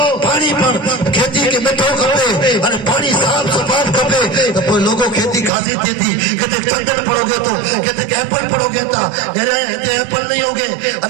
पानी पर खेती के मिठो खपे अने पानी साफ सफाई खपे तो कोई लोगो खेती खासी थी कदे चंदन पड़ोगे तो कदे एप्पल पड़ोगे ता मेरे इते एप्पल नहीं होगे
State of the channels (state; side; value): drops out; left; at 5.5 s